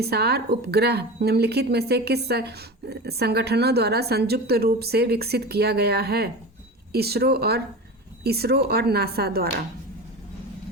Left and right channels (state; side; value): normal; both; correlation 0.29